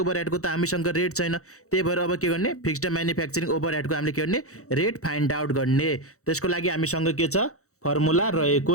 ओभरहेडको त हामीसँग रेट छैन, त्यही भएर अब के गर्ने, फिक्स्ड म्यानुफ्याक्चरिङ ओभरहेडको हामीले के गर्ने, रेट फाइन्ड आउट गर्ने। त्यसको लागि हामीसँग के छ, फर्मुला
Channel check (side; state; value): right; late; 0.65 ms